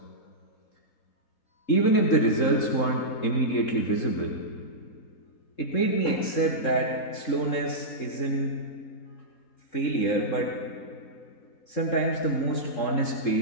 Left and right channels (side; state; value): right; late; 3.7 ms